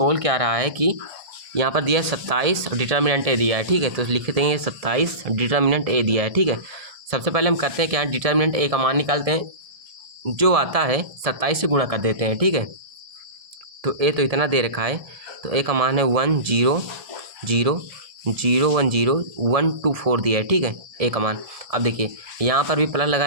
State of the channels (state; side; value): late; left; 1.7 ms